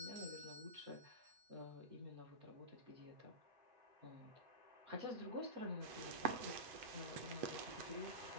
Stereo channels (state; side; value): late; left; 8.0 ms